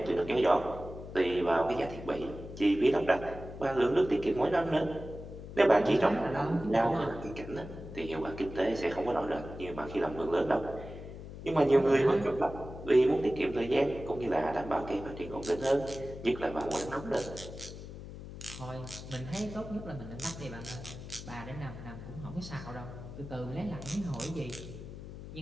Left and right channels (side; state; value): left; noise; hum, 12 dB below the sound